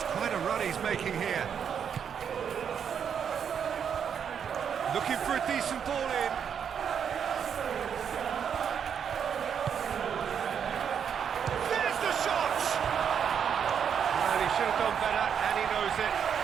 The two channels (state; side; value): quieter; left; 7.7 dB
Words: quite a run he's making here. Looking for a decent ball in. There's the shot! Well, he should have done better, and he knows it.